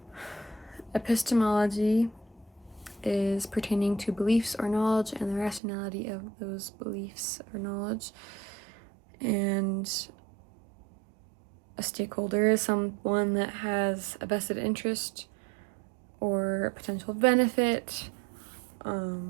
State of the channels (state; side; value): drops out; left; at 5.6 s